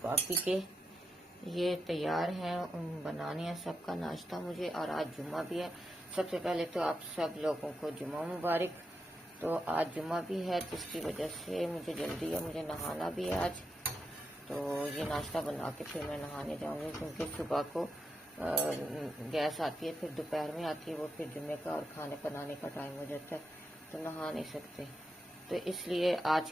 बाकी के ये तैयार है, बनाने हैं सबका नाश्ता मुझे। और आज जुम्मा भी है। सबसे पहले तो आप सब लोगों को जुम्मा मुबारक। तो आज जुम्मा भी है, जिसकी वजह से मुझे जल्दी है, मुझे नहाना भी है आज। तो ये नाश्ता बना के फिर मैं नहाने जाऊंगी, क्योंकि सुबह को गैस आती है, फिर दोपहर में आती है, वो फिर जुम्मे का और खाने बनाने का टाइम हो जाता है, तो नहा नहीं सकते। तो इसलिए आज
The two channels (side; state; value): both; normal; correlation 0.86